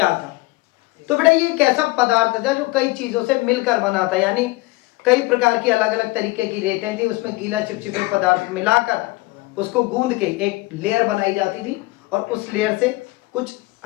था, तो बेटा ये एक ऐसा पदार्थ था जो कई चीजों से मिलकर बना था, यानी कई प्रकार की अलग अलग तरीके की रेतें थी, उसमें गीला चिपचिपे पदार्थ मिलाकर उसको गूंद के एक लेयर बनाई जाती थी और उस लेयर से कुछ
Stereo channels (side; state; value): right; quieter; 21.7 dB